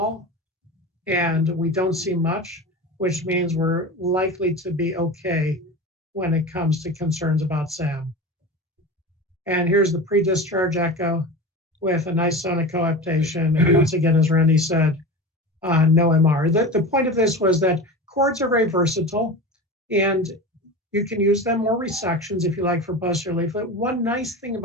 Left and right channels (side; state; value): both; normal; correlation 0.29